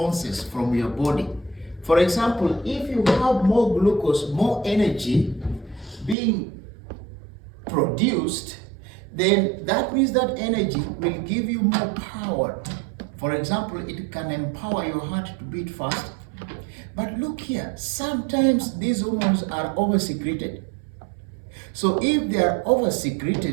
from your body. For example, if you have more glucose, more energy being produced, then that means that energy will give you more power. For example, it can empower your heart to beat fast. But look here, sometimes these hormones are over-secreted. So if they are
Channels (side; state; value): left; drops out; at 6.2 s